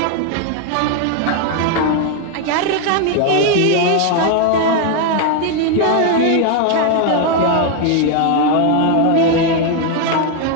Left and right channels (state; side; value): different; both; correlation 0.01